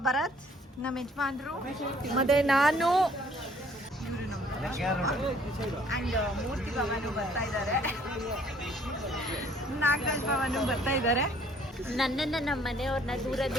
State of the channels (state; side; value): normal; both; correlation 0.60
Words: ಭರತ್ ನಮ್ಮ ಯಜಮಾನ್ರು, ಮತ್ತೆ ನಾನು ಅಂಡ್ ಮೂರ್ತಿ ಭವನು ಬರ್ತಾ ಇದ್ದಾರೆ, ನಾಗರಾಜ್ ಭವನು ಬರ್ತಾ ಇದ್ದಾರೆ. ನನ್ನನ್ನ ನಮ್ಮ ಮನೆಯವ್ರನ್ನ